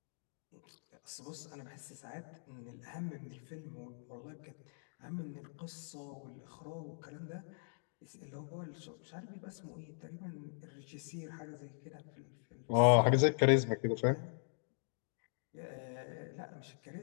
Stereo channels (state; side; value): silent; right; digital silence